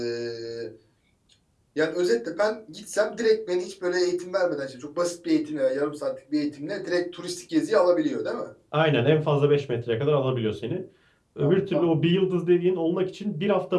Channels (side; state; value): both; identical; correlation 1.00